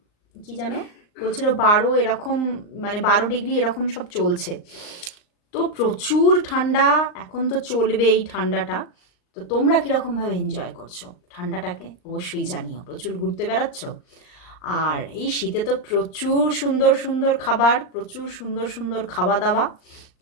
কি যেন বলছিল 12 এরকম, মানে 12 ডিগ্রি এরকম সব চলছে। তো প্রচুর ঠান্ডা, এখন তো চলবে এই ঠান্ডাটা। তো তোমরা কীরকমভাবে এনজয় করছো ঠান্ডাটাকে অবশ্যই জানিও। প্রচুর ঘুরতে বেড়াচ্ছ? আর এই শীতে তো প্রচুর সুন্দর সুন্দর খাবার, প্রচুর সুন্দর সুন্দর খাওয়া দাওয়া।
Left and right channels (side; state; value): right; late; 39 ms